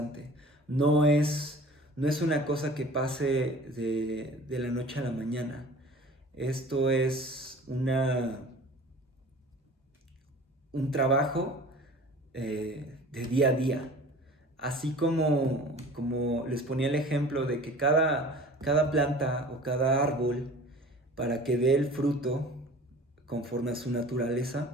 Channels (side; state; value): both; normal; correlation 0.44